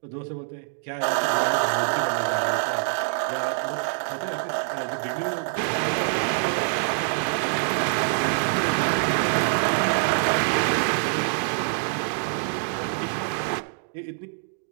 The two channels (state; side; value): silent; left; digital silence